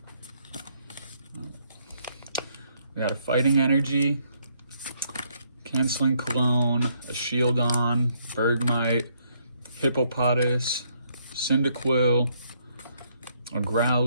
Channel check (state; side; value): inverted; both; correlation -0.72